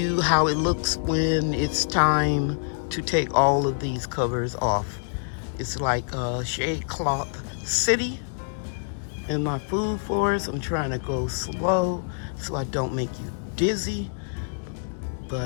how it looks when it's time to take all of these covers off. It's like a shade cloth city in my food forest. I'm trying to go slow so I don't make you dizzy,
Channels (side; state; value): right; silent; digital silence